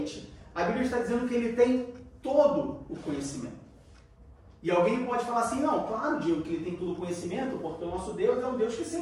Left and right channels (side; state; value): both; identical; correlation 1.00